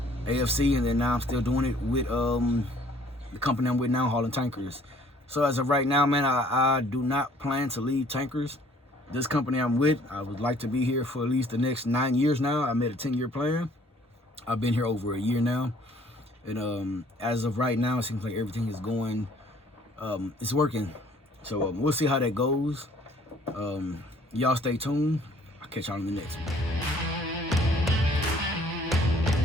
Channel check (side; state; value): both; normal; correlation 0.58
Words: AFC, and then now I'm still doing it with the company I'm with now, hauling tankers. So as of right now, man, I do not plan to leave tankers. This company I'm with, I would like to be here for at least the next 9 years now. I made a 10-year plan. I've been here over a year now. And as of right now, it seems like everything is going, it's working. So we'll see how that goes. Y'all stay tuned. I'll catch y'all in the next one.